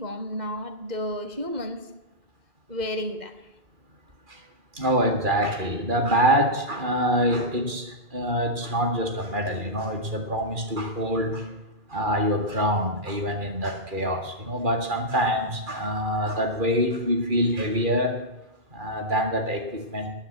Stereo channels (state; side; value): late; left; 2.4 ms